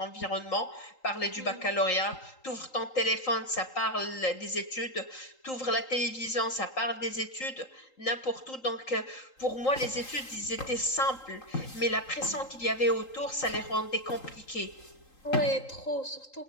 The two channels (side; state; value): right; late; 3.8 ms